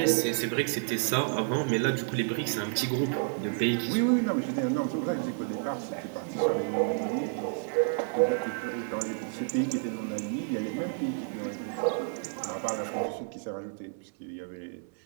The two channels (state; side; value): silent; left; digital silence